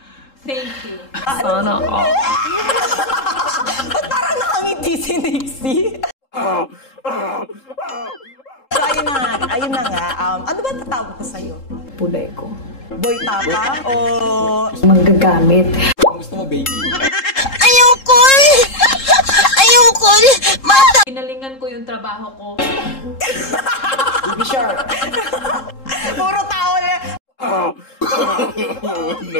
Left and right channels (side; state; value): right; late; 3.7 ms